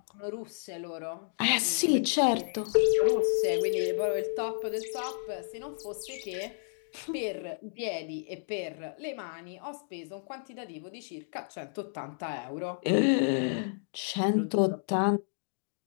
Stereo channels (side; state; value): right; silent; digital silence